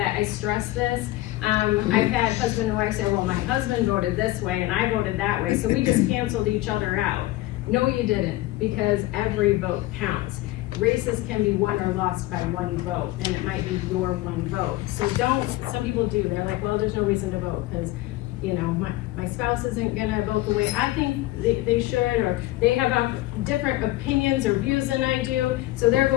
I stress this. I've had husband and wife say, well, my husband voted this way and I voted that way, so we just canceled each other out. No, you didn't, because every vote counts. Races can be won or lost by one vote, and it might be your one vote. So some people do, they're like, well, there's no reason to vote because, you know, my spouse isn't gonna vote the way I think they should, or they have different opinions or views than I do, so they're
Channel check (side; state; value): right; quieter; 17.5 dB